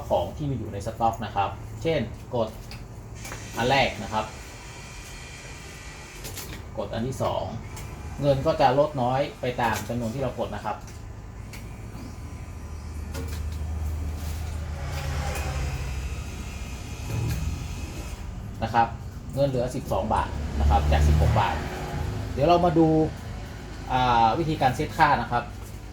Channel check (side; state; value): both; identical; correlation 1.00